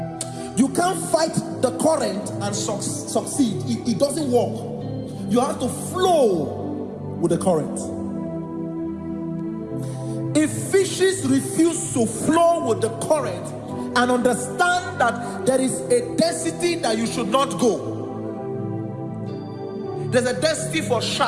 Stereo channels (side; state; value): both; identical; correlation 1.00